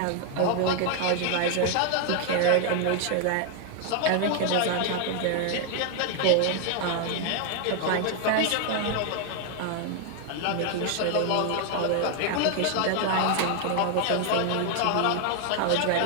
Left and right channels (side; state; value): both; different; correlation 0.00